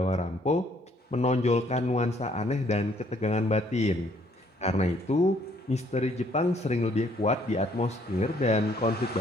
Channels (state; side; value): normal; both; correlation 0.64